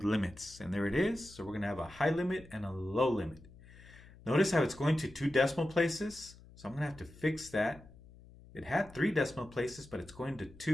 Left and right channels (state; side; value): noise; left; hum, 21 dB below the sound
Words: limits. And there it is. So we're going to have a high limit and a low limit. Notice how it's going to 2 decimal places. So I'm going to have to fix that. It had 3 decimal places, but it's going to